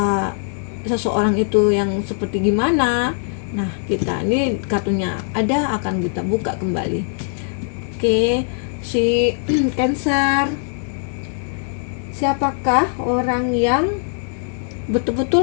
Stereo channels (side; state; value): right; silent; digital silence